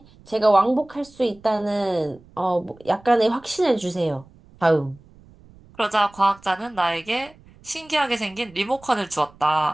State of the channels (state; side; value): noise; right; rumble, 26 dB below the sound